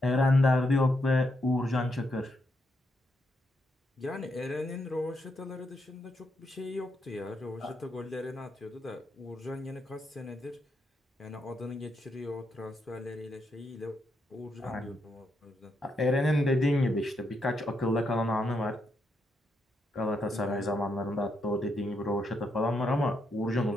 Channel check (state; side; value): normal; both; correlation 0.80